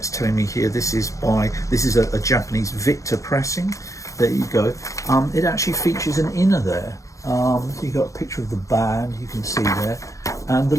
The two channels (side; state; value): right; late; 0.15 ms